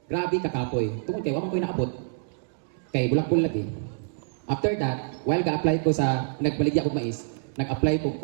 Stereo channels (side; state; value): left; silent; digital silence